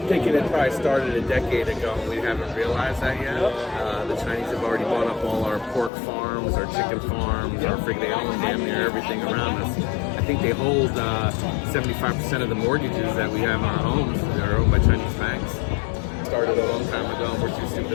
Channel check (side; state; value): right; drops out; at 5.9 s